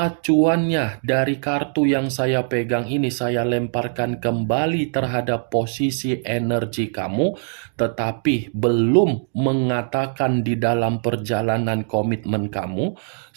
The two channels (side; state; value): left; silent; digital silence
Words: dari kartu yang saya pegang ini saya lemparkan kembali terhadap posisi energi kamu, tetapi belum mengatakan di dalam perjalanan komitmen kamu,